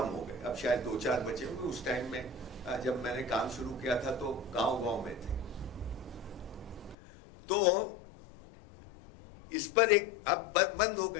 हो गए, अब शायद 2-4 बचे होंगे। उस टाइम में जब मैंने काम शुरू किया था तो गांव-गांव में थे। तो इस पर एक अब बंद हो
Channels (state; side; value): drops out; right; at 7.0 s